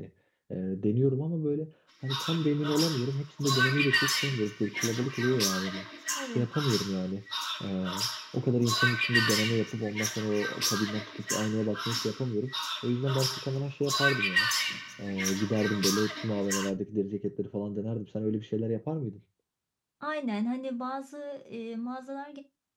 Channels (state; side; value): identical; both; correlation 1.00